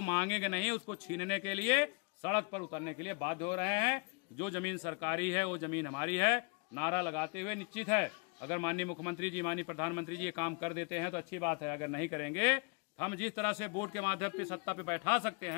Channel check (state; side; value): quieter; right; 33.7 dB